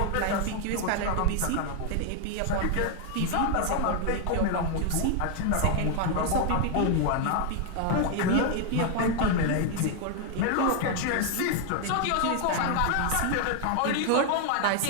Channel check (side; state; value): both; different; correlation 0.00